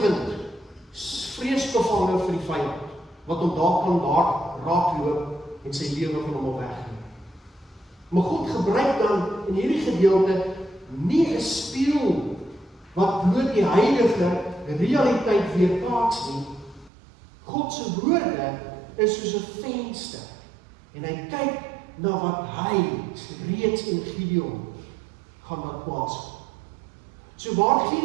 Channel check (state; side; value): drops out; left; at 16.9 s